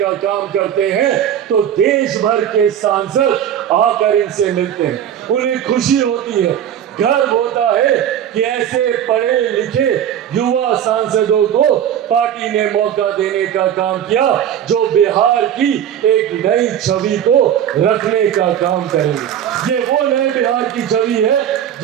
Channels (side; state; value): left; quieter; 9.8 dB